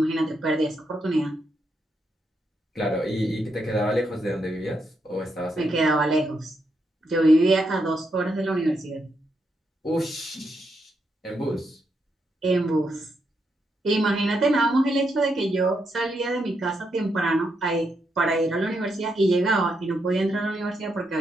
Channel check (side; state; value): both; normal; correlation 0.81